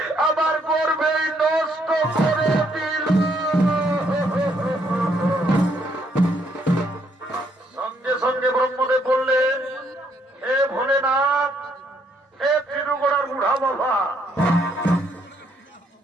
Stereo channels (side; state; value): both; normal; correlation 0.70